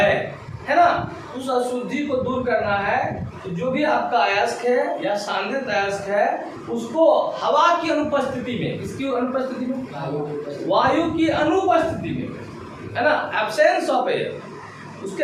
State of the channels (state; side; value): identical; both; correlation 1.00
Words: ना, उस अशुद्धि को दूर करना है। तो जो भी आपका अयस्क है या सांद्रित अयस्क है, उसको हवा की अनुपस्थिति में, किसकी अनुपस्थिति में, वायु की अनुपस्थिति में, है ना, एब्सेंस ऑफ एयर,